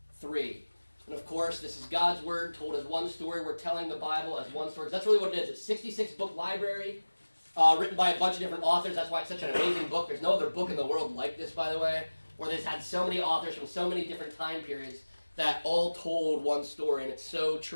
3. And of course, this is God's Word told as one story. We're telling the Bible as one story. That's really what it is. It's a 66-book library written by a bunch of different authors. That's why it's such an amazing book. There's no other book in the world like this, by the way, where they've had so many authors from so many different time periods that all told one story, and it's so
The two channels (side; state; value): both; inverted; correlation -1.00